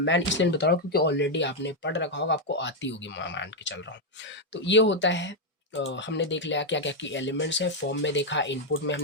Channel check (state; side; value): normal; both; correlation 0.01